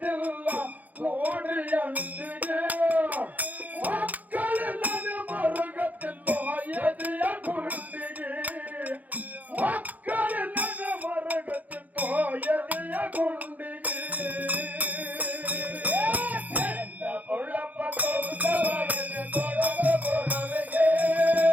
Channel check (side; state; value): left; late; 0.079 ms